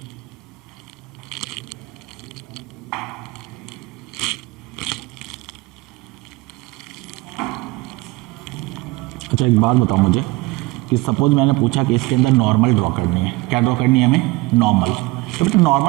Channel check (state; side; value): quieter; left; 21.6 dB